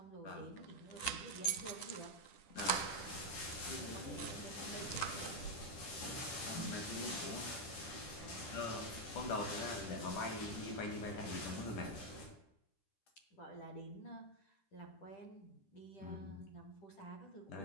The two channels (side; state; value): right; late; 10 ms